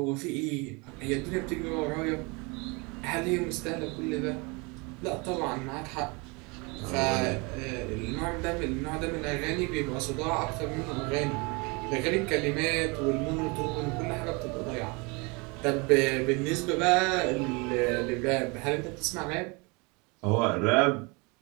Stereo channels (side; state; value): left; quieter; 28.7 dB